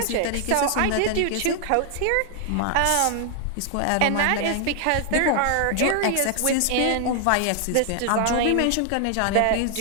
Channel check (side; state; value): both; different; correlation 0.00